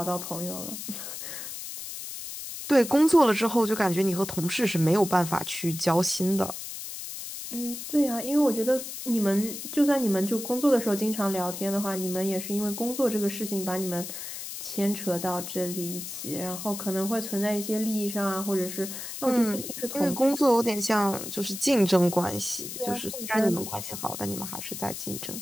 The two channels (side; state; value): left; noise; hiss, 8 dB below the sound